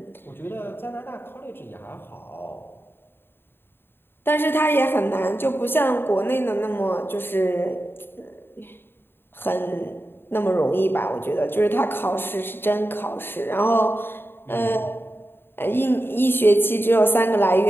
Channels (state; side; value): late; right; 0.10 ms